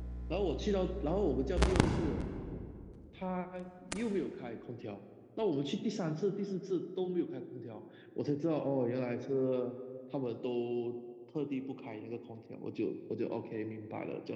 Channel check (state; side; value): identical; both; correlation 1.00